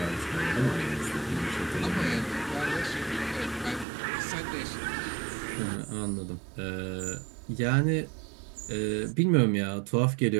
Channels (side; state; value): left; drops out; at 3.9 s